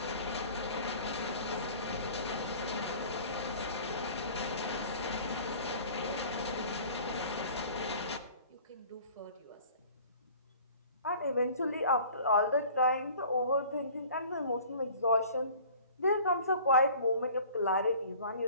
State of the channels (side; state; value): both; inverted; correlation -0.47